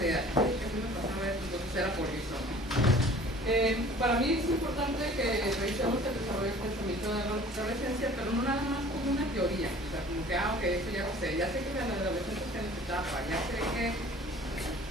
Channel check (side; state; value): both; normal; correlation 0.48